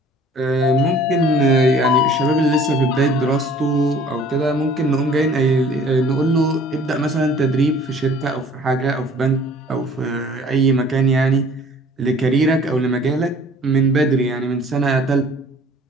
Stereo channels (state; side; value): normal; both; correlation 0.52